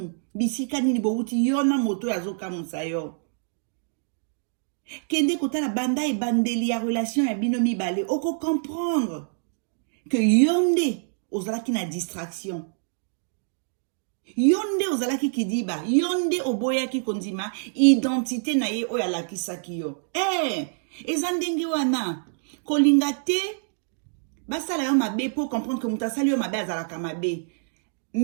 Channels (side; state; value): left; silent; digital silence